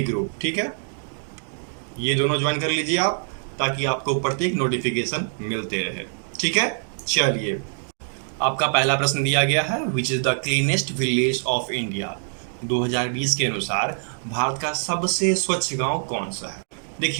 ग्रुप। ठीक है, ये दोनों ज्वाइन कर लीजिए आप, ताकि आपको प्रत्येक नोटिफिकेशन मिलते रहे। ठीक है, चलिए, आपका पहला प्रश्न दिया गया है, which is the cleanest village of India. 2020 के अनुसार भारत का सबसे स्वच्छ गांव कौन सा है।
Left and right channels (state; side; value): silent; left; 62 dB below the other